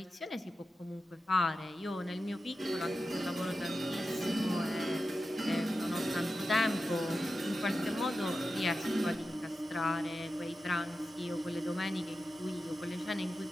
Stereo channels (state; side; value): normal; both; correlation 0.91